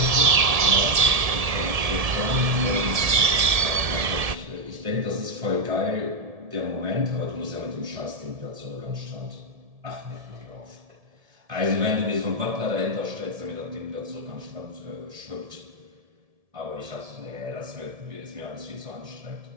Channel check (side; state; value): left; late; 1.7 ms